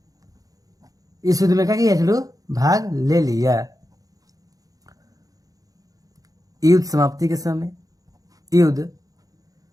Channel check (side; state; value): left; late; 0.17 ms